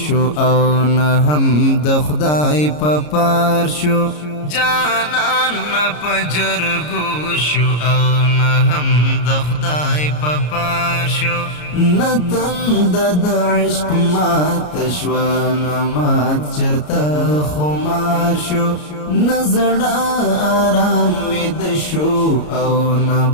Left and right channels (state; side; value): late; right; 33 ms